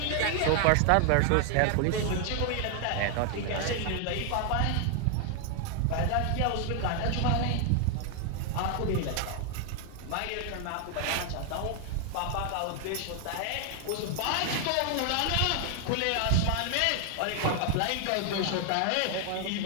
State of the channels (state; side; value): different; both; correlation 0.00